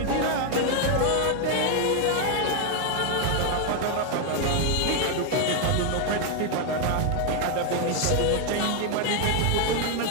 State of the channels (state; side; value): different; both; correlation 0.00